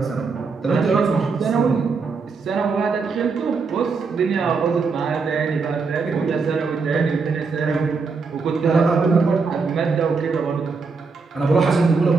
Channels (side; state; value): left; quieter; 4.7 dB